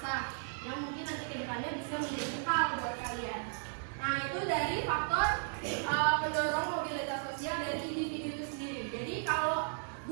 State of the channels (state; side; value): silent; left; digital silence